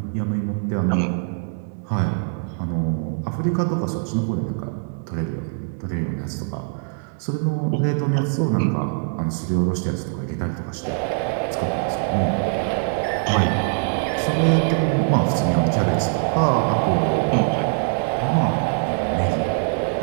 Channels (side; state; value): left; silent; 60 dB below the other